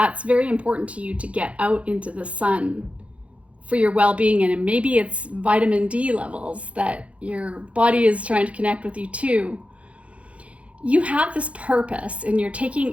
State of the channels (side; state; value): left; late; 0.063 ms